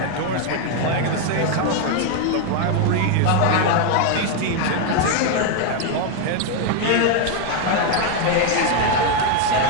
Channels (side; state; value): both; different; correlation 0.01